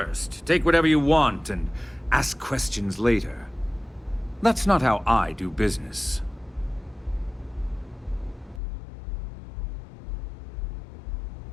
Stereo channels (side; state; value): right; drops out; at 8.6 s